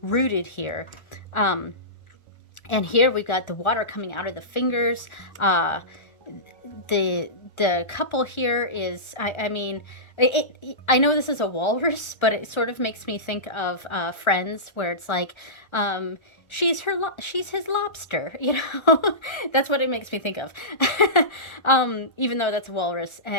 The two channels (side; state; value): right; late; 1.4 ms